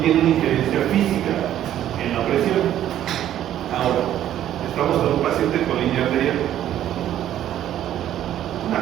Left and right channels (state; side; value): quieter; left; 11.7 dB